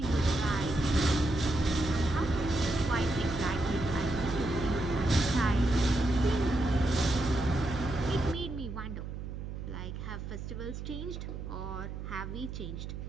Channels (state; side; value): noise; right; hum, 7 dB below the sound